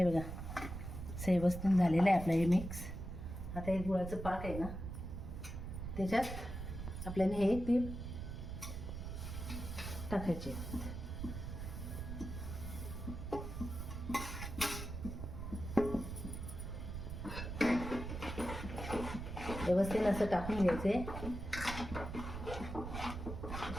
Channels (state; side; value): noise; right; rumble, 6 dB below the sound